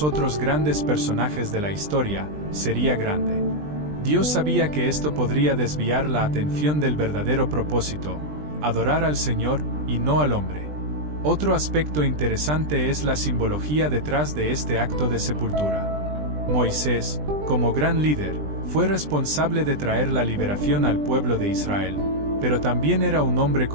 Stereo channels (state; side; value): late; left; 20 ms